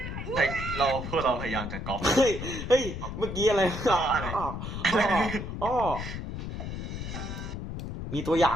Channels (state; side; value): noise; left; rumble, 6 dB below the sound